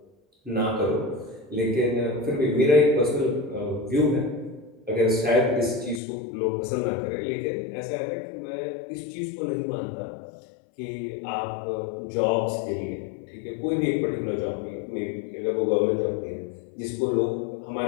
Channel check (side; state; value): right; drops out; at 6.0 s